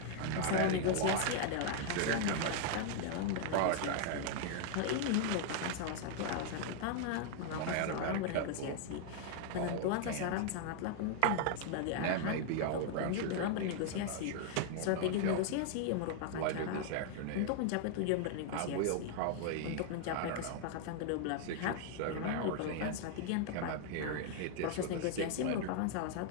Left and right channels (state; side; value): different; both; correlation 0.00